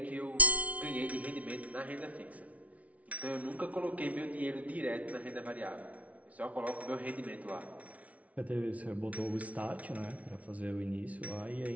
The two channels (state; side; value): late; left; 0.067 ms